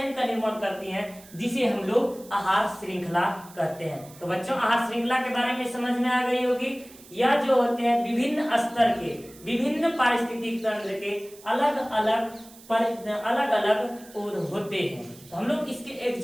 का निर्माण करती हैं, जिसे हम लोग आहार श्रृंखला कहते हैं। तो बच्चों, आहार श्रृंखला के बारे में समझ में आ गई होगी। यह जो होते हैं विभिन्न स्तर के, विभिन्न पारिस्थितिक तंत्र के अलग अलग होते हैं। तो हम लोग इसके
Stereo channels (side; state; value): right; noise; hiss, 21 dB below the sound